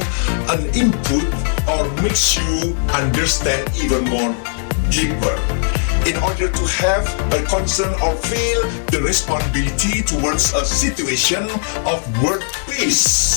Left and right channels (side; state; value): right; silent; 67 dB below the other